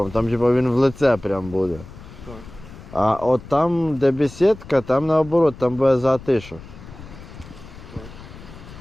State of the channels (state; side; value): noise; left; rumble, 17 dB below the sound